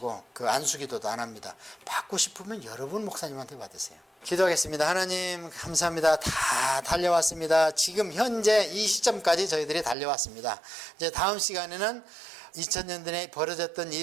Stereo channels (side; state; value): left; drops out; at 10.0 s